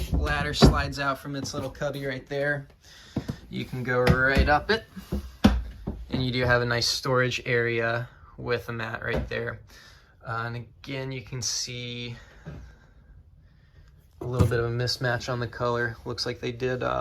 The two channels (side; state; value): both; identical; correlation 1.00